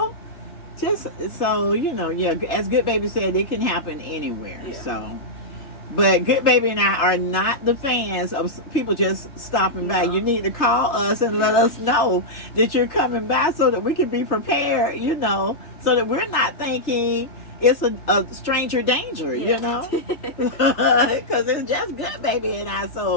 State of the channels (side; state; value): right; late; 3.1 ms